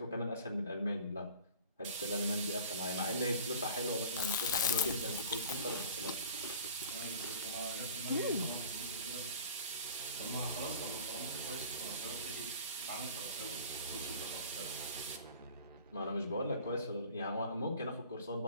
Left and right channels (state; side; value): inverted; both; correlation -0.44